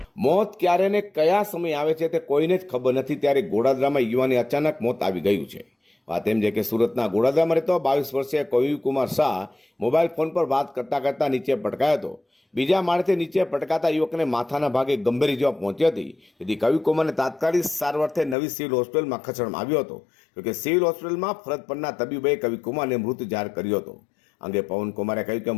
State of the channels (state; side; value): drops out; right; at 18.4 s